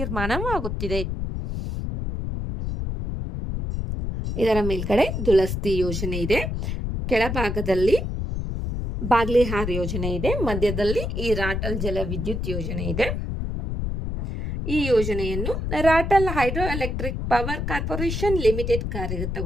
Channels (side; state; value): left; noise; rumble, 3 dB below the sound